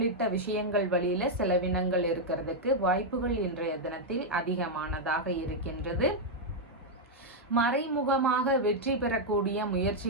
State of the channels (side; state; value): both; normal; correlation -0.02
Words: விஷயங்கள் வழியில செலவினங்கள் இருக்கிறதுக்கு வாய்ப்புகள் இன்றைய தினத்தில் அதிகமானதாக இருக்கின்றது. மறைமுகமாக வெற்றி பெறக்கூடிய